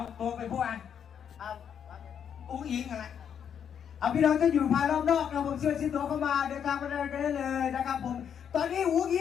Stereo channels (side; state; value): right; quieter; 8.2 dB